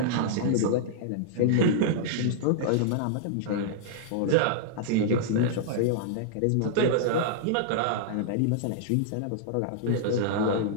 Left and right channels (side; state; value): both; different; correlation -0.01